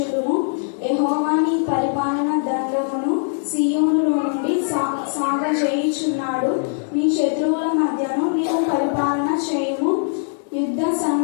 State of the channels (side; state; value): right; silent; digital silence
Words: యెహోవా నీ పరిపాలన దండమును సీయోనులో నుండి సాగజేయుచున్నాడు. నీ శత్రువుల మధ్యను నీవు పరిపాలన చేయుము. యుద్ధ